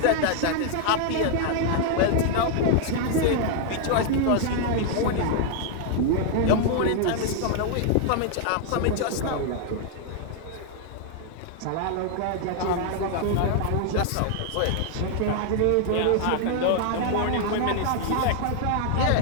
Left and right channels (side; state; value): both; different; correlation 0.00